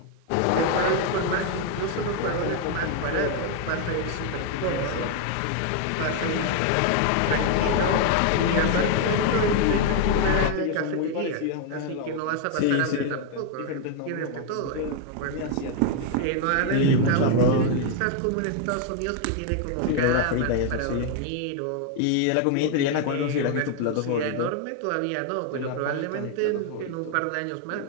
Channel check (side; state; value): both; different; correlation 0.00